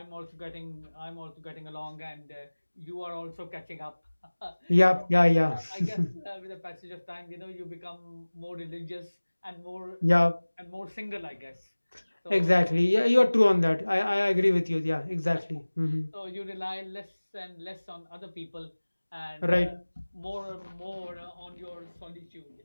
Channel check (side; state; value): both; inverted; correlation -1.00